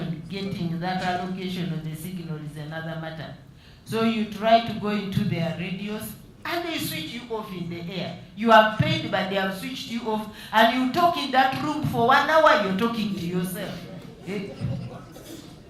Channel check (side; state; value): both; identical; correlation 1.00